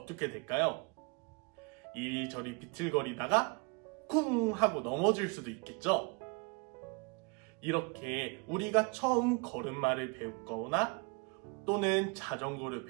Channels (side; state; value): left; quieter; 31.4 dB